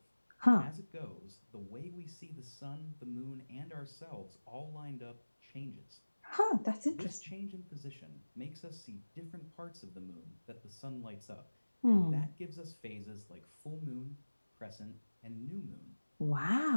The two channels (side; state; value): both; inverted; correlation -1.00